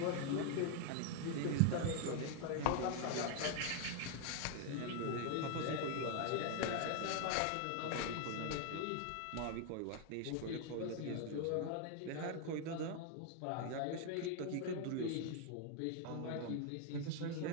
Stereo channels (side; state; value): both; different; correlation 0.00